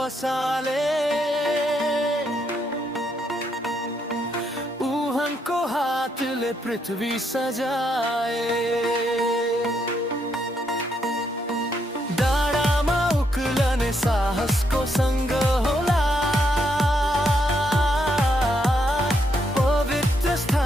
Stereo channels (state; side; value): normal; both; correlation 0.77